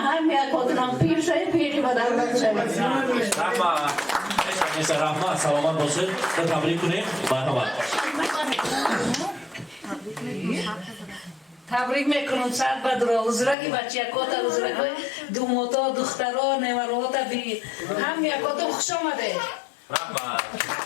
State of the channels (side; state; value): right; drops out; at 13.6 s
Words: یک آدنم پیر شد پیری با دولت شد رحمه سلامت باشید تبریک کنیم. مرحبا. تبریک میکنم صد بدرا حضورت که بچه یکات حضورت که دوماتا دخترها نیمروات بی هم یکات خوش آمده.